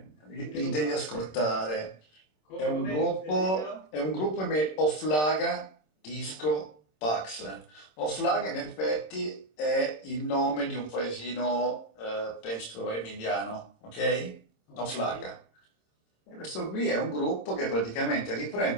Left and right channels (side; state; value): right; late; 26 ms